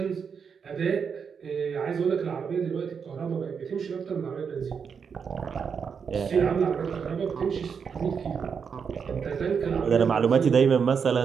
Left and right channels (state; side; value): quieter; left; 6.4 dB